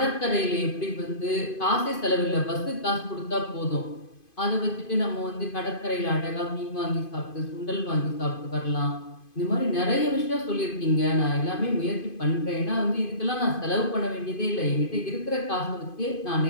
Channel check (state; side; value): late; right; 2.5 ms